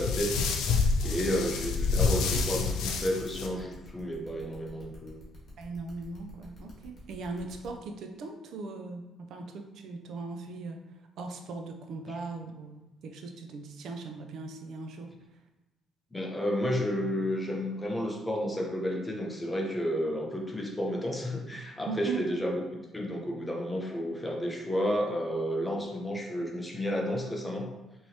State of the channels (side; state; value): both; normal; correlation 0.72